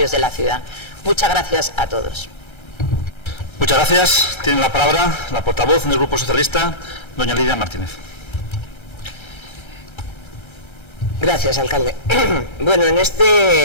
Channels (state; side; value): late; right; 1.3 ms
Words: de la ciudad. Muchas gracias a todos. Muchas gracias. Tiene la palabra la portavoz del Grupo Socialista, doña Lidia Martínez. Gracias, alcalde. Bueno, en